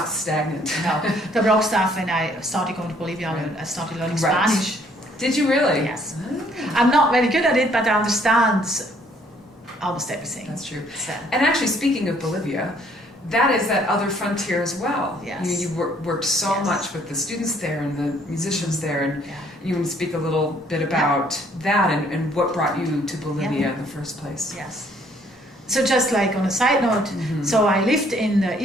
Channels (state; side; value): normal; both; correlation 0.63